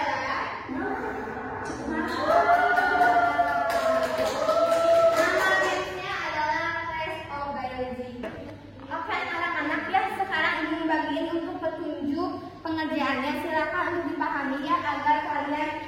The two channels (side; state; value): both; identical; correlation 1.00